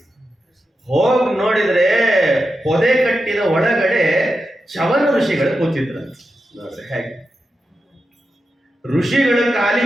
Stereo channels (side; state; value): both; normal; correlation 0.89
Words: ಹೋಗಿ ನೋಡಿದ್ರೆ ಪೊದೆ ಕಟ್ಟಿದ ಒಳಗಡೆ ಚವನ ಋಷಿಗಳು ಕೂತಿದ್ರಂತ. ನೋಡ್ರಿ ಹೇಗೆ ಋಷಿಗಳ